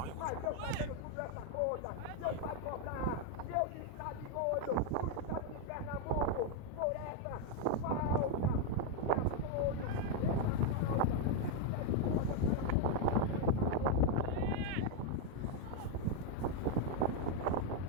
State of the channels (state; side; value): different; both; correlation 0.01